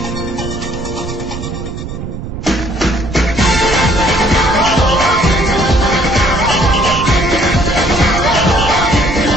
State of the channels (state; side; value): noise; right; rumble, 8 dB below the sound